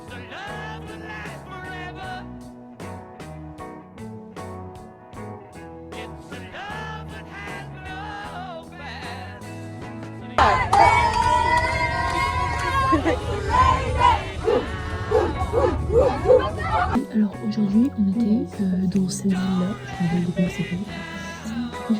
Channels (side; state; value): both; identical; correlation 1.00